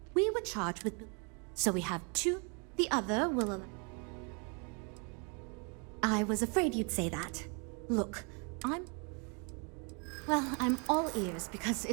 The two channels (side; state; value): left; quieter; 35.2 dB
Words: We were charged with... So we have two. The other will... I was afraid you'd say that. Look, Well, I'm all ears because